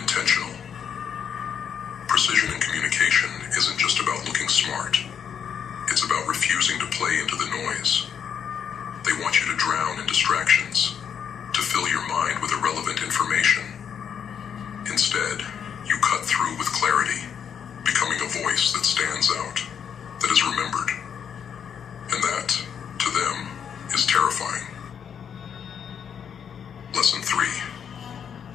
Precision in communication isn't just about looking smart. It's about refusing to play into the noise. They want you to drown in distractions, to fill your mind with irrelevant information. Instead, you cut through with clarity, becoming a voice that stands out, that is remembered. And that, to them, is terrifying. Lesson 3.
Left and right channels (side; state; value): right; quieter; 7.8 dB